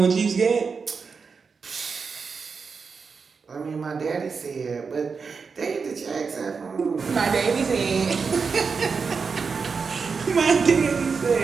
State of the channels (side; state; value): left; quieter; 5.2 dB